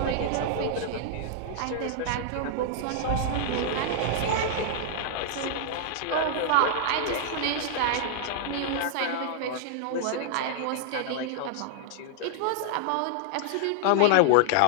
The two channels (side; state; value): both; different; correlation -0.01